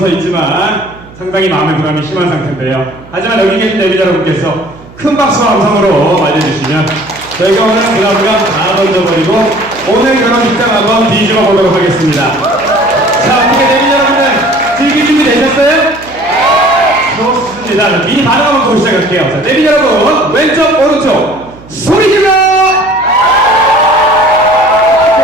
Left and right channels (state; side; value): noise; right; hum, 21 dB below the sound